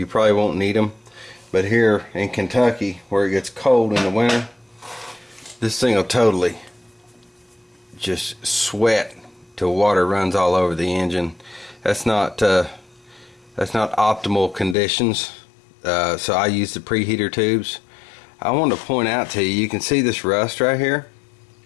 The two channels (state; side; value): drops out; right; at 14.8 s